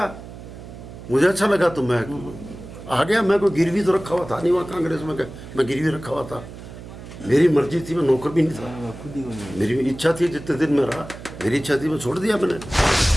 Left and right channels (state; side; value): noise; right; hum, 14 dB below the sound